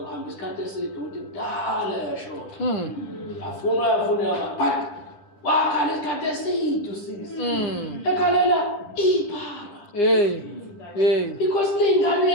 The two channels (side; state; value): right; late; 10 ms